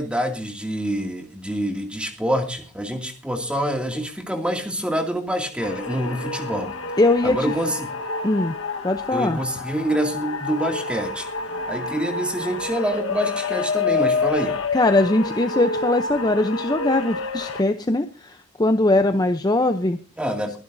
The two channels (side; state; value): both; normal; correlation 0.52